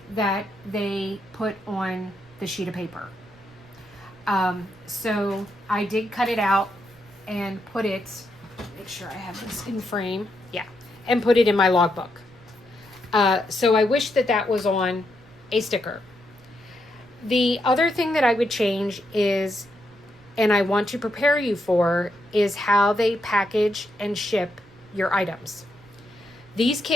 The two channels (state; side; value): noise; right; rumble, 27 dB below the sound